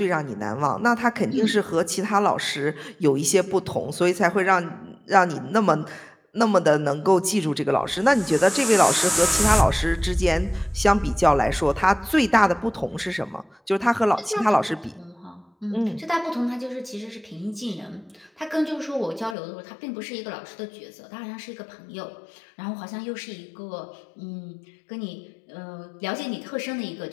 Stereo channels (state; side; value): drops out; right; at 19.4 s